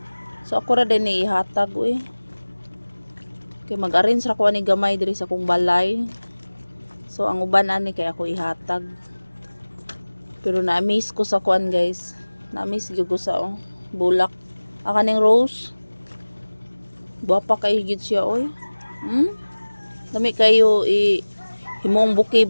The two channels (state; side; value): inverted; both; correlation -1.00